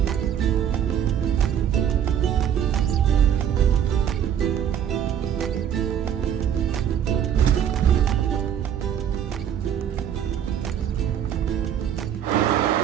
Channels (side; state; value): left; quieter; 9.3 dB